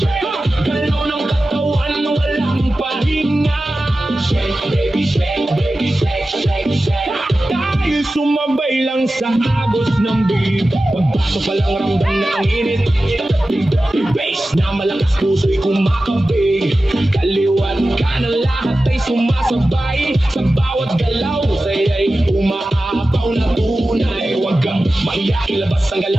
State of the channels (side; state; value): both; normal; correlation 0.94